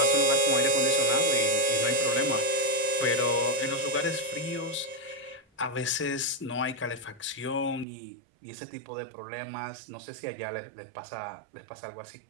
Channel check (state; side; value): drops out; left; at 7.9 s